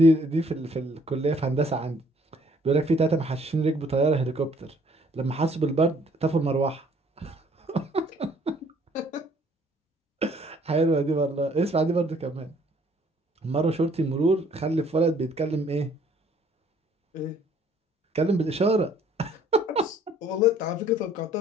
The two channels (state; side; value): normal; both; correlation 0.61